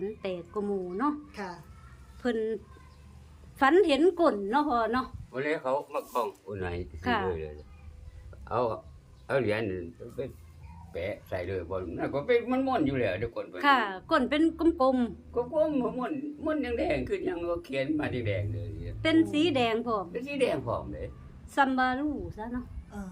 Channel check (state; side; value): identical; both; correlation 1.00